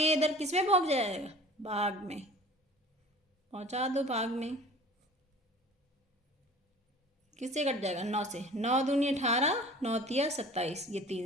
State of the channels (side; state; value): both; normal; correlation 0.44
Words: इधर किस में पहुंच जाएगा? भाग में पहुंचा दो, भाग में। किससे कट जाएगा? 9 से। 9 दूनी 18, 9 तिया 27, ये